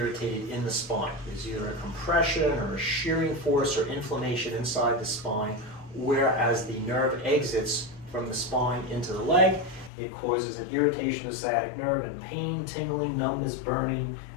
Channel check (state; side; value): drops out; right; at 9.9 s